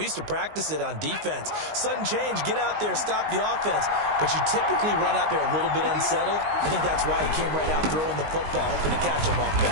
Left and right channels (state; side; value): late; left; 19 ms